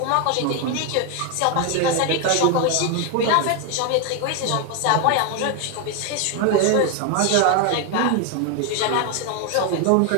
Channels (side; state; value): both; different; correlation 0.01